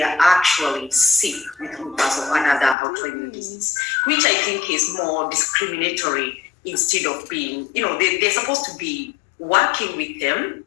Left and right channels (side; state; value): right; drops out; at 2.8 s